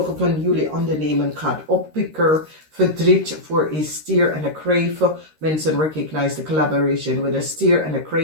van jullie ondernemen gaat oppikken. Verdriet voor een stier en een kreef. Mensen recognize the collaboration with a stier en een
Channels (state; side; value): late; left; 13 ms